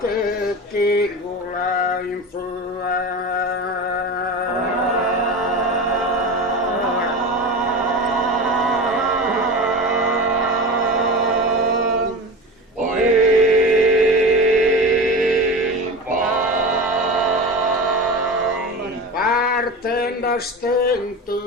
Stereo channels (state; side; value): normal; both; correlation 0.29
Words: chi vola in Partendo a